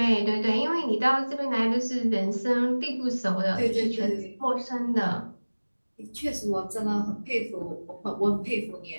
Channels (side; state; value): both; inverted; correlation -1.00